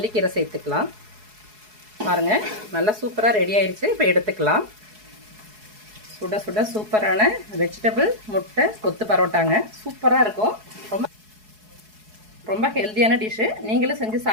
சேர்த்துக்கலாம். பாருங்கள், நல்லா சூப்பராக ரெடி ஆயிடுச்சு. இப்போ எடுத்துக்கலாம். சுட சுட சூப்பரான வெஜிடபிள் முட்டை கொத்து பரோட்டாங்க. சூப்பராக இருக்கும். ரொம்ப ஹெல்த்தியான டிஷ்ஷு. நீங்களும் செஞ்சு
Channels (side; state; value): left; late; 4.7 ms